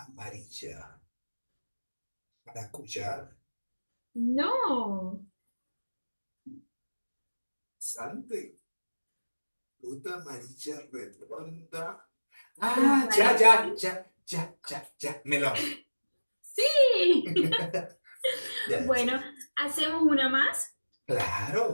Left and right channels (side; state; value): both; inverted; correlation -1.00